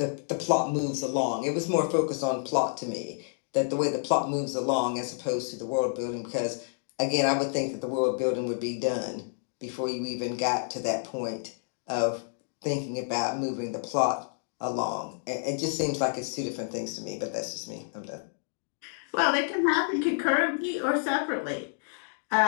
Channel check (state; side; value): silent; right; digital silence